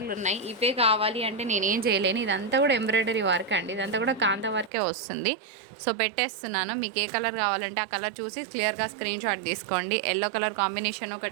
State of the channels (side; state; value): left; drops out; at 4.7 s